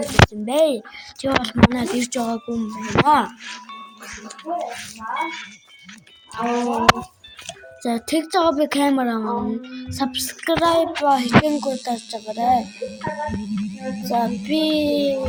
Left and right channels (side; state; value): both; identical; correlation 1.00